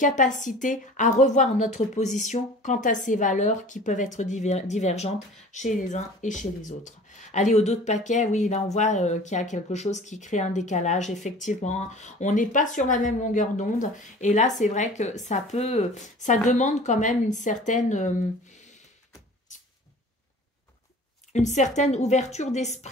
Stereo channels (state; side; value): normal; both; correlation 0.44